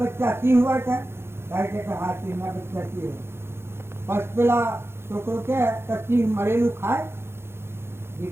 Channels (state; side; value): late; left; 0.12 ms